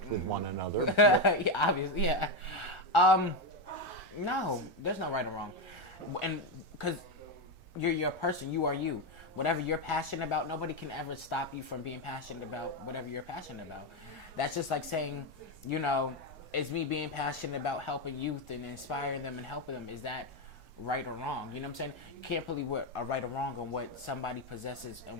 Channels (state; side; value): normal; both; correlation 0.09